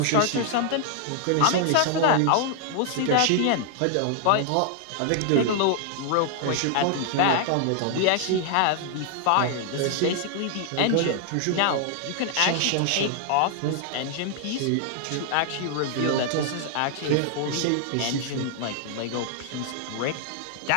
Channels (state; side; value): different; both; correlation 0.00